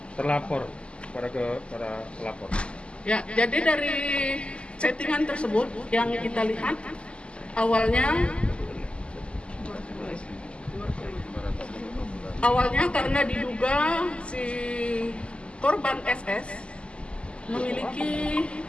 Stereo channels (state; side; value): late; right; 0.054 ms